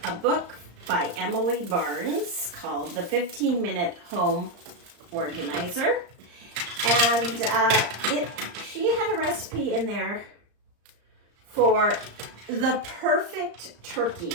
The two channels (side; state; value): left; late; 35 ms